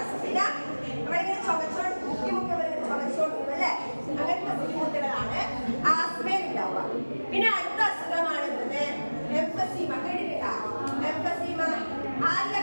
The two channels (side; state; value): both; inverted; correlation -1.00